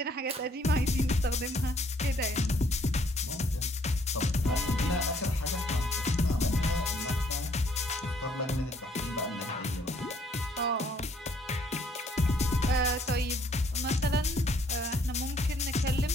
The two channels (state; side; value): normal; both; correlation 0.65